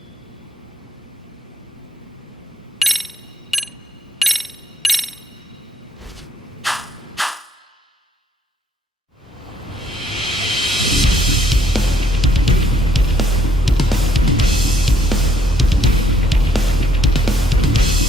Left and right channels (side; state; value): both; normal; correlation 0.66